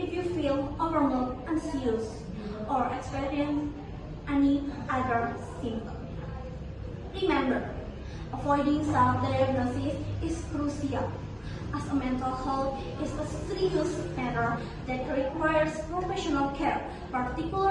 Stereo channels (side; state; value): both; identical; correlation 1.00